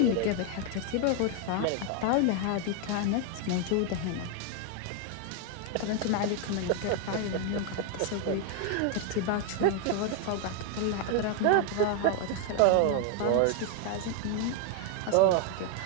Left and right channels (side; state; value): both; different; correlation 0.00